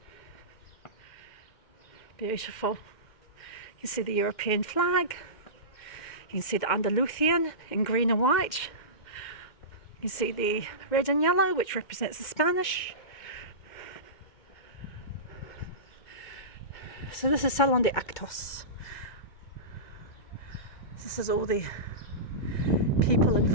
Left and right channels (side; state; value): right; late; 2.1 ms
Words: Beautiful. You can see the European flag. You can see the Andalusian in green and white. You can see the red and yellow, which represents the Spanish. So this is Salon de Actos. This is all the people